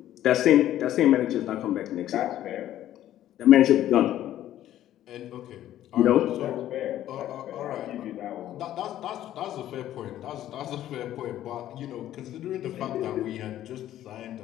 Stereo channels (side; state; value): right; quieter; 12.6 dB